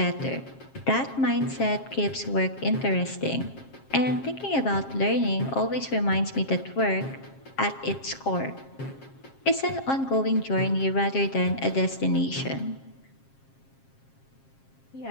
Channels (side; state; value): right; late; 7.5 ms